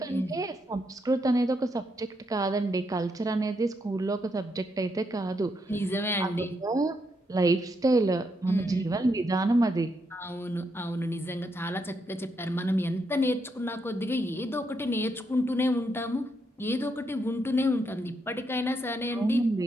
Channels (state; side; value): normal; both; correlation 0.79